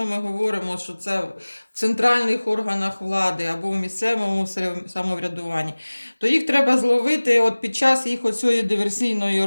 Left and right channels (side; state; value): both; inverted; correlation -1.00